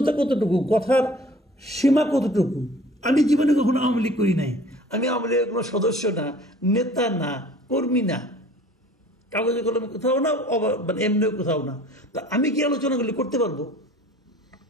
কতটুকু, কথার সীমা কতটুকু। আমি জীবনে কখনো আওয়ামী লীগ করি নাই, আমি আওয়ামী লীগের কোনো সদস্য না, নেতা না, কর্মী না, কাগজে কলমে কোথাও না, মানে এমনিও কোথাও না, তা আমি কি আলোচনাগুলি করতে পারবো?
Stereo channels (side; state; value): both; normal; correlation 0.49